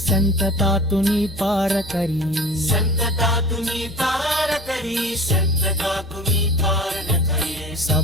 तुनी पार करी संतता तुम्ही पार करी संतता तुम्ही पार न करी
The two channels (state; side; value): noise; left; hum, 21 dB below the sound